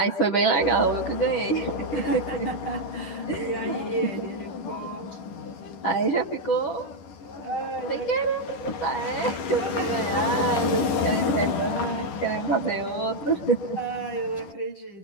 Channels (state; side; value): late; right; 10 ms